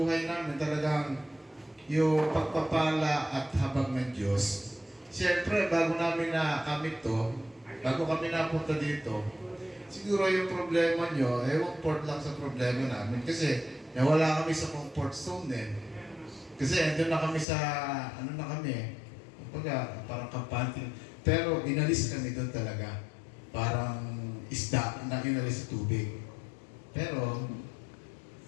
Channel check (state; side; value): drops out; right; at 17.4 s